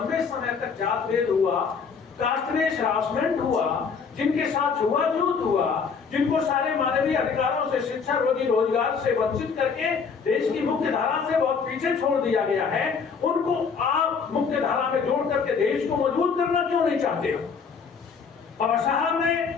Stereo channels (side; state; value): right; quieter; 5.7 dB